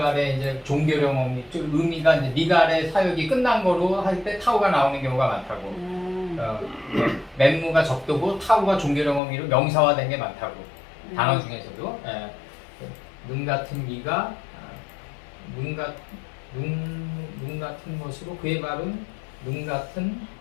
종결형 어미. 의미가 이제 니갈의 사역이 끝난 거로 할 때 타우가 나오는 경우가 많다고. 맨무가 적도고 타우가 종결형 어미로 명사화된 게 많다고. 단어 중에서도. 눈 같은 이가 눈 같은 것으로 그의 발은 눈 같은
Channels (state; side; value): drops out; right; at 9.2 s